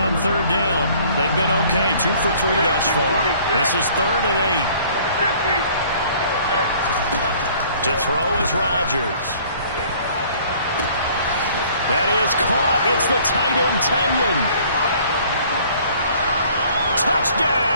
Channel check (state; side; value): inverted; both; correlation -0.55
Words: 3rd down. They've been okay, 2 for 3 thus far. This is 3rd and 8. To throw is Rodgers. That is caught. It's the tight end, Tonyan.